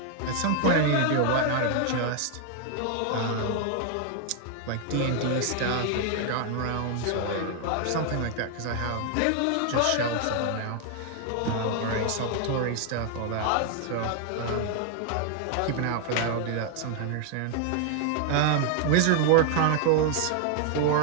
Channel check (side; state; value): both; different; correlation 0.00